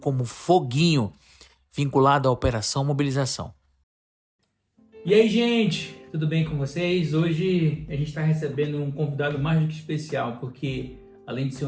Foguinho, vinculado à Operação Mobilização. E aí, gente, tudo bem com vocês? Hoje a gente está recebendo um convidado mais do que especial, porque além de ser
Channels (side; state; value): both; identical; correlation 1.00